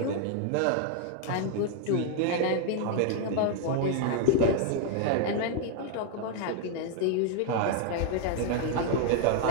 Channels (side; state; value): both; different; correlation 0.00